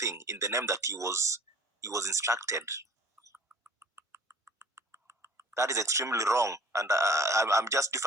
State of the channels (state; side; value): normal; both; correlation 0.50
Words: in the name that he was instructed. That is extremely wrong, and I'm just